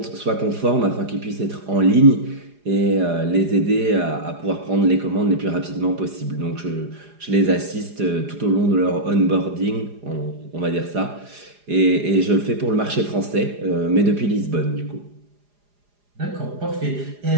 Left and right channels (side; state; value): left; late; 4.9 ms